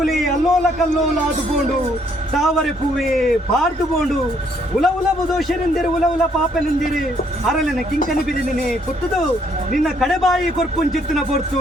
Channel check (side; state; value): both; normal; correlation 0.68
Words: ಅಲ್ಲೋಲ ಕಲ್ಲೋಲ ಆದುಕೊಂಡು ತಾವರೆ ಪೂವೆ ಪಾರ್ದುಕೊಂಡು ಉಲ ದೋಷನೆಂದಿರು ಉಲ ಪಾಪನೆಂದಿರು ಅರಳನ ಕಿಂಕನಿ ಬಿದಿನೇ ಪುತ್ತದು ನಿನ್ನ ಕಡೆಬಾಯಿ ಕೊರ್ಪುಂಚಿತ್ತಿನ ಪೊರ್ತು